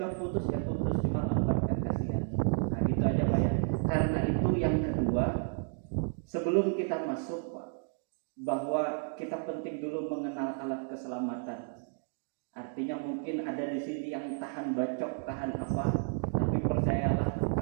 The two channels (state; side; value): silent; left; 56 dB below the other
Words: putus ya putus, cuma lambat kan kasihan. Nah Karena itu yang kedua, sebelum kita masuk Pak, bahwa kita penting dulu mengenal alat keselamatan. Artinya mungkin ada di sini yang tahan bacok, tahan apa, tapi percayalah